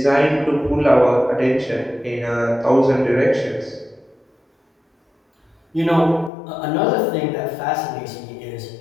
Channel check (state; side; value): drops out; right; at 6.3 s